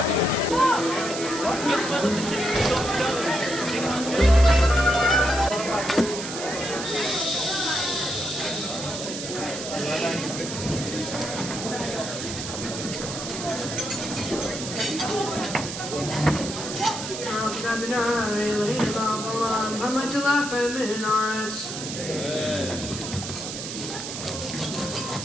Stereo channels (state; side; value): noise; right; hiss, 7 dB below the sound